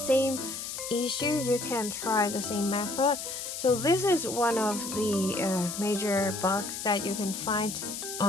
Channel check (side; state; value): left; noise; hiss, 6 dB below the sound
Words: issue, you can try the same method. So this is one of the major bugs that you can find